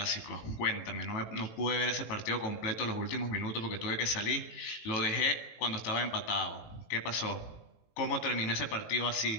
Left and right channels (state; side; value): late; right; 18 ms